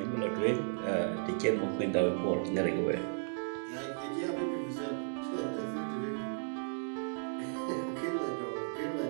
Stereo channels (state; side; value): silent; left; digital silence